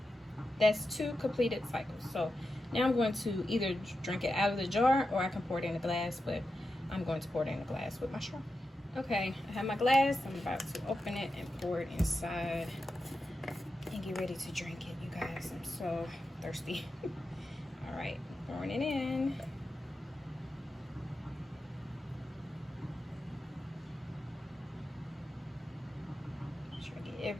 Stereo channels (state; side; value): normal; both; correlation 0.90